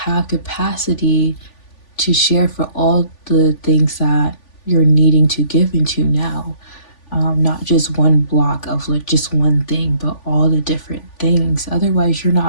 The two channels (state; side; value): late; right; 3.5 ms